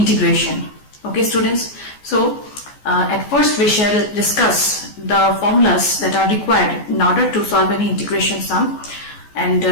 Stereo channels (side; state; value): right; late; 14 ms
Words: Okay students, so at first we shall discuss the formulas that are required in order to solve any integration sum, and